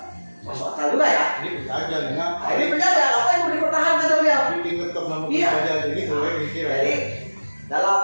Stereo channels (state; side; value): inverted; both; correlation -1.00